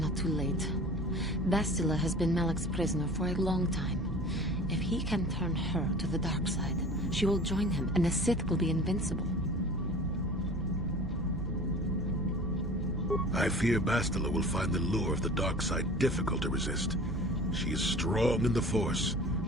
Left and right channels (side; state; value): both; normal; correlation 0.41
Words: too late. Bastila has been Malak's prisoner for a long time. If he can turn her to the dark side, she will join him, and the Sith will be invincible. I fear Bastila will find the lure of the dark side difficult to resist. She is strong in the Force,